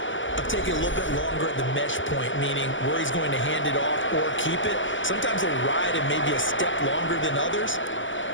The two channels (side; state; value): right; late; 0.55 ms